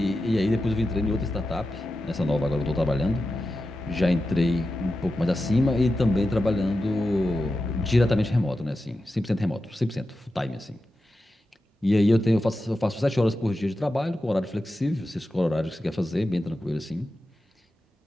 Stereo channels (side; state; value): both; normal; correlation 0.91